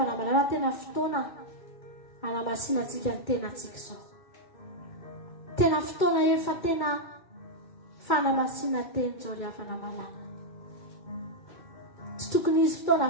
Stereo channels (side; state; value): right; late; 2.2 ms